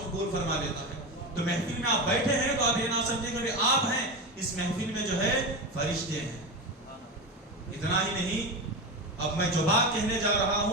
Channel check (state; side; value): normal; both; correlation 0.20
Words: فرما دیتا ہے. تو محفل میں آپ بیٹھے ہیں تو آپ یہ نہ سمجھیں کہ آپ ہیں, اس محفل میں جو ہے فرشتے ہیں. اتنا ہی نہیں, اب میں جو بات کہنے جا رہا